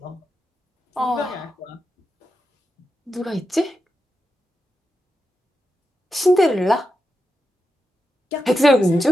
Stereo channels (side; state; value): both; normal; correlation 0.88